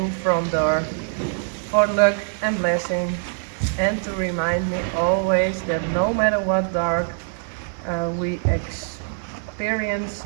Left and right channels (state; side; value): silent; left; digital silence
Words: front door for luck and blessing, and to remind me always that no matter what dark we experience,